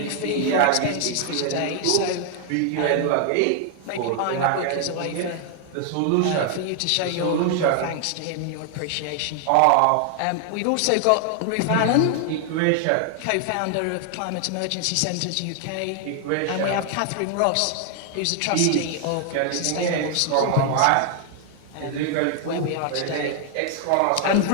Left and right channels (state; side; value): different; both; correlation 0.00